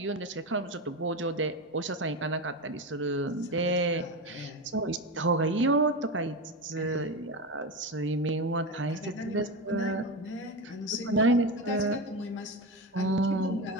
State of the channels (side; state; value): both; normal; correlation 0.18